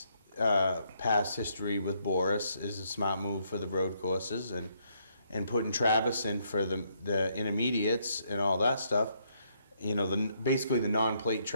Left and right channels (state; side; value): inverted; both; correlation -0.73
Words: past history with Boris is a smart move for the road courses, and putting Travis in for the intermediates and all that stuff, you know, basically the non-plate